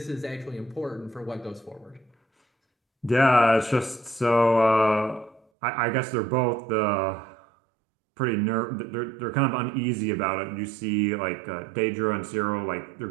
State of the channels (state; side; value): drops out; left; at 5.4 s